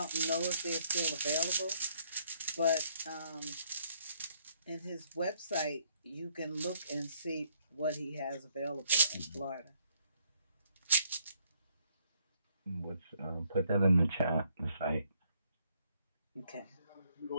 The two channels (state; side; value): inverted; both; correlation -0.68